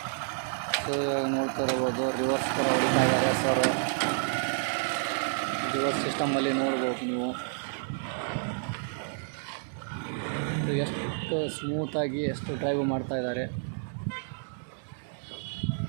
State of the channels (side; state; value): left; silent; digital silence